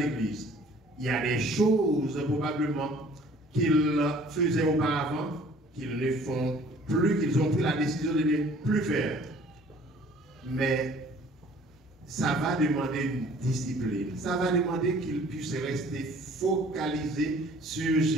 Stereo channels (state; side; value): normal; both; correlation 0.53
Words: Il y a des choses probablement qu'ils faisaient auparavant, qu'ils ne font plus, qu'ils ont pris la décision de ne plus faire. Mais ça va demander une discipline. Ça va demander qu'ils puissent rester focalisés sur